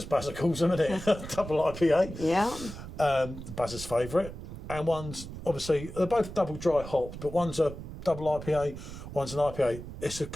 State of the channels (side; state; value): right; noise; rumble, 11 dB below the sound